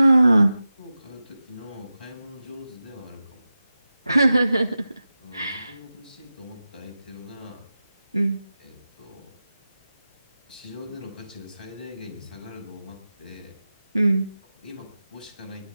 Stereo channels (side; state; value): both; inverted; correlation -0.94